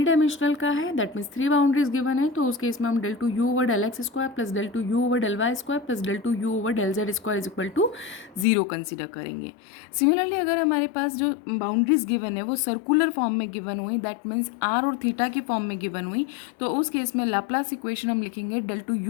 डायमेंशनल का है, that means three boundaries given है, तो उस case में हम del two you over del x square plus del two you over del y square plus del two you over del z square is equal to zero consider करेंगे। Similarly अगर हमारे पास जो बाउंड्रीज गिवन है वो circular form में given हुई, that means r और थीटा की फॉर्म में गिवन हुई, तो उस केस में लाप्लास इक्वेशन हम लिखेंगे del two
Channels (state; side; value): drops out; right; at 8.5 s